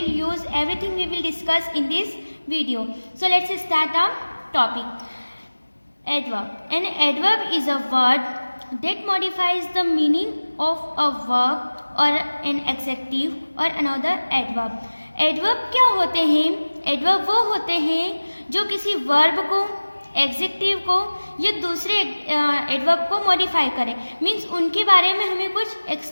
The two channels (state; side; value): inverted; both; correlation -1.00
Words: use? Everything we will discuss in this video. So let's start our topic. Adverb. An adverb is a word that modifies the meaning of a verb or an adjective or another adverb. Adverb क्या होते हैं? Adverb वो होते हैं जो किसी verb को, adjective को या दूसरे एडवर्ब को मॉडिफाई करें। मीन्स उनके बारे में हमें कुछ